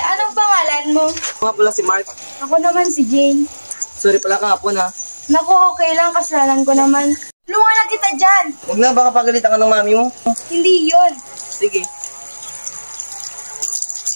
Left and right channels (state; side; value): inverted; both; correlation -1.00